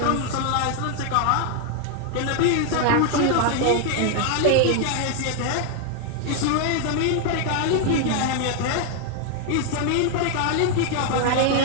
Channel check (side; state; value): both; different; correlation 0.00